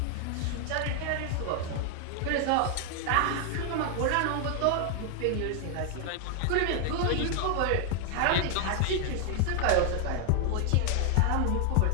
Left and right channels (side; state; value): both; different; correlation 0.00